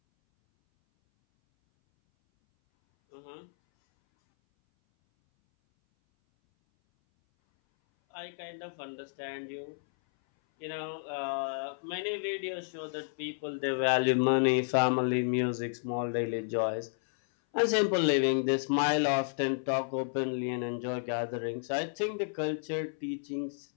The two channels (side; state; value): right; silent; 57 dB below the other